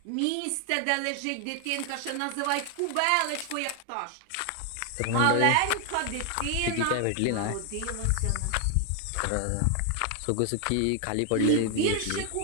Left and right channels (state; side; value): different; both; correlation 0.00